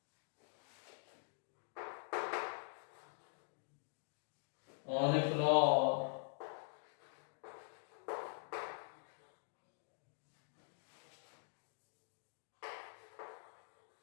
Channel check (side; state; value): right; silent; digital silence